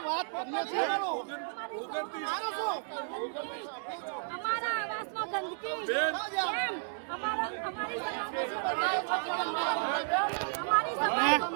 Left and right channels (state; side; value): silent; left; digital silence